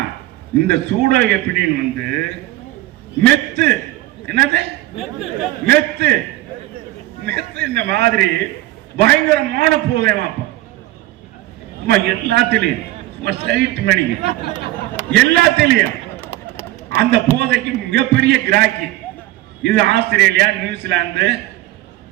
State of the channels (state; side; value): quieter; left; 16.8 dB